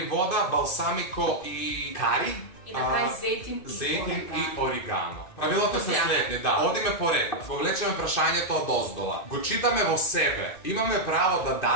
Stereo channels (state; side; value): late; right; 2.5 ms